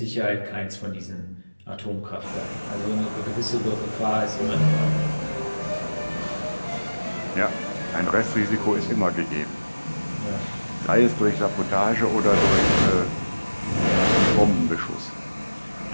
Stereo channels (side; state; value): both; inverted; correlation -1.00